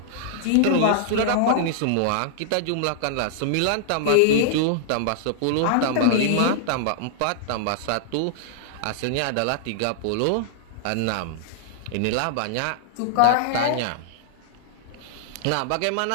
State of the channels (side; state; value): both; different; correlation -0.01